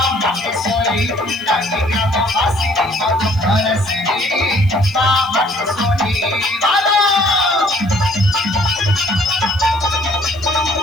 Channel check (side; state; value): right; noise; hiss, 27 dB below the sound